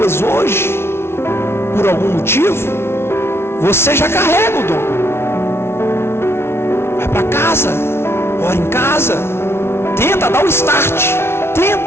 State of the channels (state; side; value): late; right; 0.12 ms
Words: hoje, por algum motivo, você já carrega o dom. Vai para casa, ora em casa, tenta dar o start,